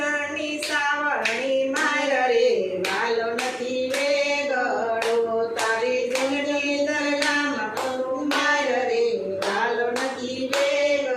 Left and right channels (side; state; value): both; identical; correlation 1.00